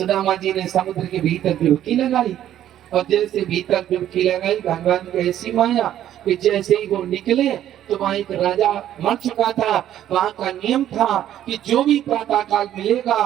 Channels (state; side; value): quieter; left; 11.6 dB